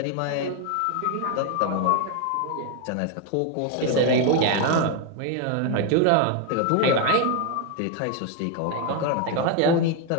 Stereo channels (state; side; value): different; both; correlation 0.01